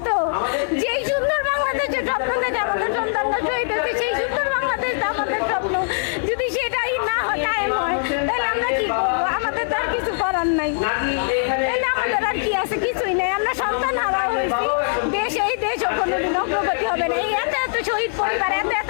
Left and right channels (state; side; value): silent; right; digital silence